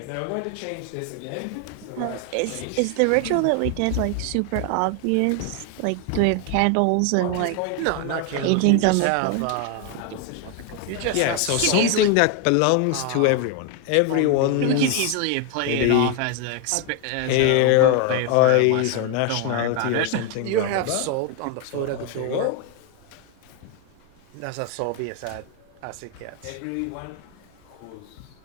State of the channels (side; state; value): both; different; correlation 0.01